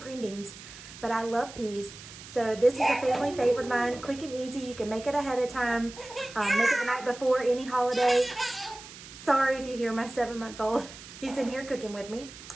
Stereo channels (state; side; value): noise; right; hiss, 16 dB below the sound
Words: beans, but I love peas. So this is a family favorite of mine, quick and easy. You can make it ahead of time, make it the night before any holiday. Sorry if you hear my 7-month-old. He's in here cooking with me.